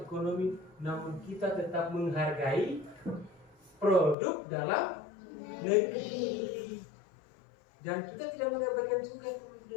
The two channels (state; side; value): drops out; right; at 4.2 s